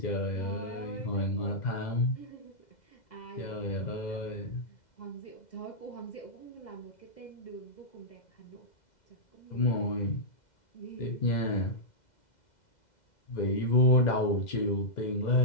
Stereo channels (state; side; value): late; right; 2.0 ms